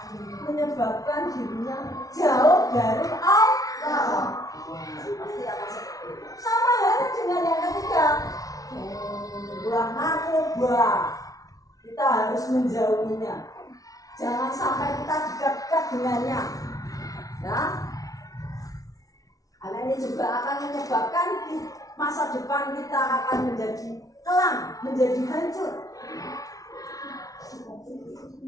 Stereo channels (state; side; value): late; right; 0.18 ms